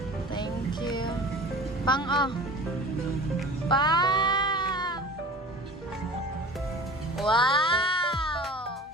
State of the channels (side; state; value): both; normal; correlation 0.39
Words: Thank you. Pang oh. Pa! Wow!